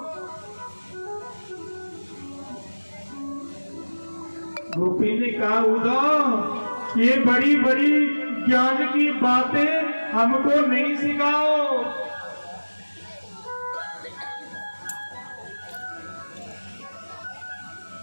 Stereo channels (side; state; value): both; inverted; correlation -1.00